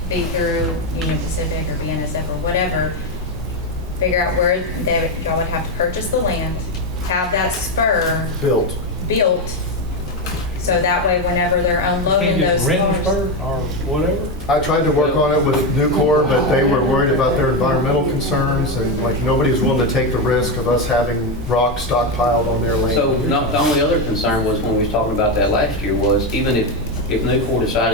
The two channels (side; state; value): both; normal; correlation 0.10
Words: be through Union Pacific or BNSF or whatever. Figure out where y'all would have to purchase the land, have that spur built, so that way whenever they're unloading those cars. Spur or whatever? I tried to work on it with Nucor, but they were worried about their environmental concerns, and nobody was willing to take the risk of us having rock stockpiled on their land. So the only other concern was when we was talking about that last year was even if Nucor